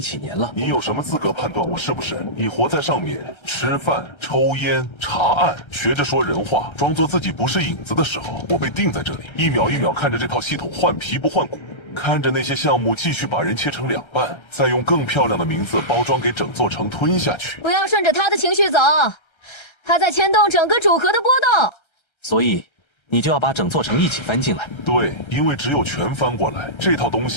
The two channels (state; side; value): late; right; 1.3 ms